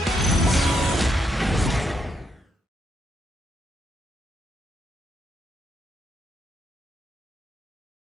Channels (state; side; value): normal; both; correlation 0.78